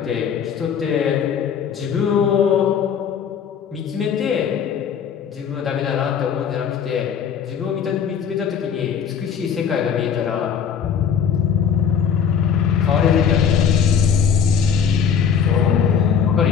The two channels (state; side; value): quieter; right; 7.5 dB